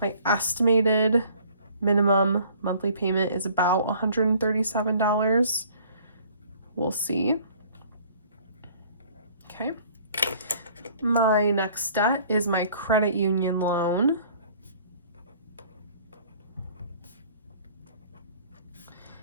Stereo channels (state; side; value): inverted; both; correlation -0.54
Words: estimated minimum monthly payment is about $137. We'll see. Okay. My next debt is my credit union loan.